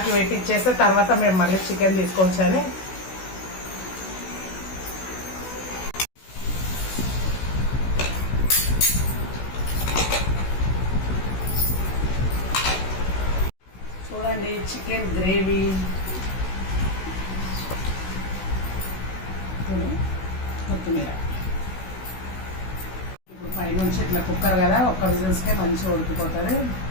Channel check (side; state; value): right; late; 16 ms